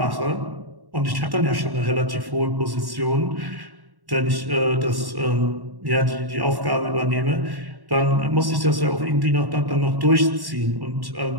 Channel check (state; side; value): late; left; 1.1 ms